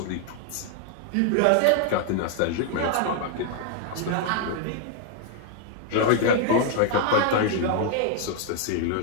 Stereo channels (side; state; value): both; different; correlation 0.00